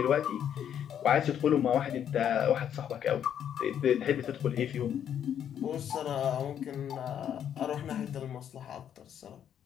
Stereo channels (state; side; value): quieter; right; 9.4 dB